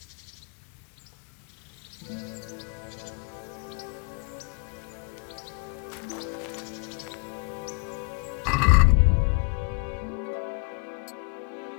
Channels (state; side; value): quieter; right; 38.2 dB